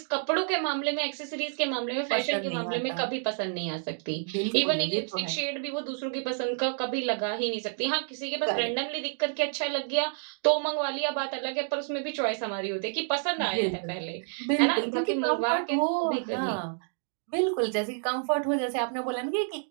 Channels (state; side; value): silent; left; 58 dB below the other